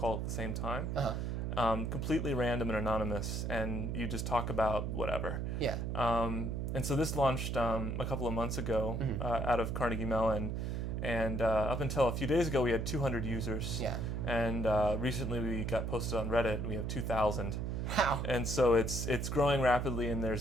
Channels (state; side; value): noise; right; hum, 1 dB below the sound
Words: at the same time. Uh-huh. completely random and anonymous, and you just talk about whatever. Yeah. And so this launched a couple of months ago out of Carnegie Mellon, and up until a few days ago we had 200 users. Yeah. And recently we got posted on Reddit, and we have 2,000. Wow. And so it's growing rapidly, and